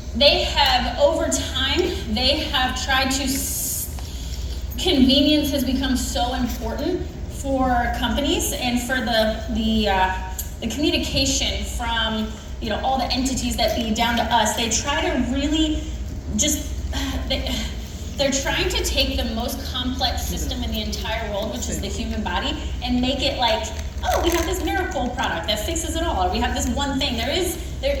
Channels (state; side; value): identical; both; correlation 1.00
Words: they have, over time, they have tried to, convenience has become so important for companies and for the communication from, you know, all the entities that be down to us. They try to really just, they're trying to take the most complex system in the entire world, which is the human body, and make it like, oh, we have this miracle product that fixes it all, or we have this one thing.